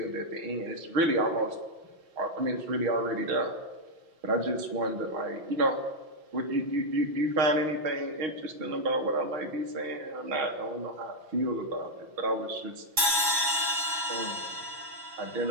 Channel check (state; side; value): late; left; 6.1 ms